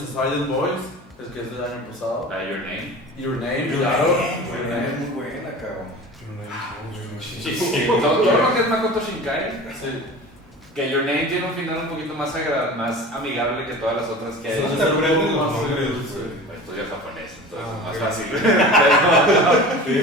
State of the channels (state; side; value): normal; both; correlation 0.37